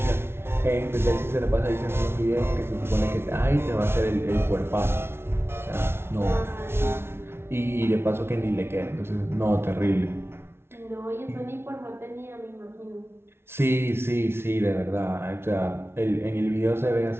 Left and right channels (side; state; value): left; late; 0.12 ms